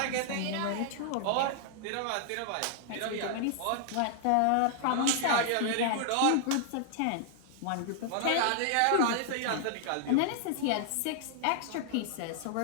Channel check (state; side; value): different; both; correlation -0.01